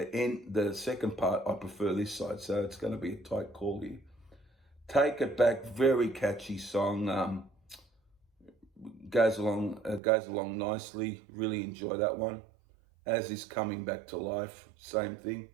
second part, I prefer this side, so it's going to be a tight call here. Take It Back, very catchy song. Goes along nicely. Really enjoy that one. As Is Coming Back to Life, same thing.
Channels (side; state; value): left; drops out; at 10.0 s